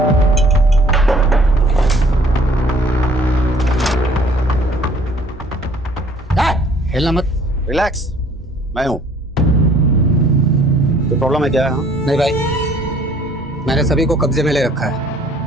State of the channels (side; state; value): both; normal; correlation 0.57